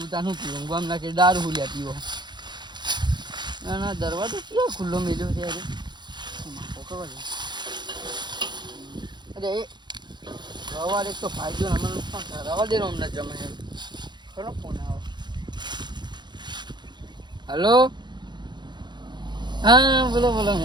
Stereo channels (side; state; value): left; late; 0.21 ms